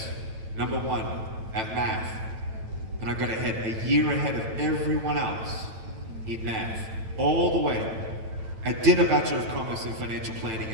#1 at math, and I got ahead, a year ahead of everyone else in math, all the way. I did a Bachelor of Commerce in Financial Planning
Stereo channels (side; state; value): left; late; 9.0 ms